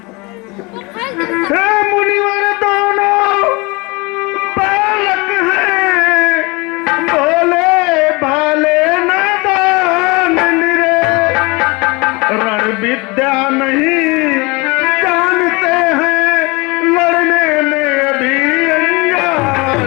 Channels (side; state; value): right; quieter; 26.2 dB